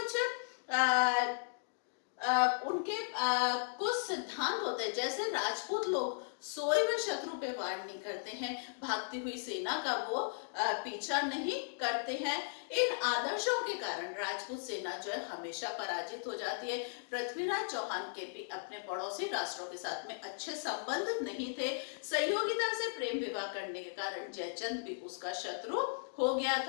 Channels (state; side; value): silent; right; digital silence